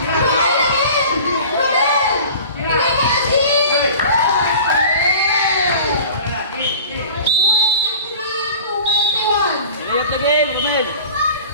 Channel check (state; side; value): inverted; both; correlation -0.42